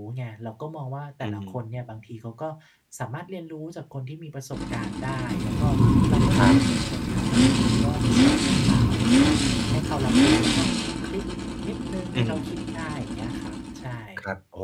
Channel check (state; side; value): identical; both; correlation 1.00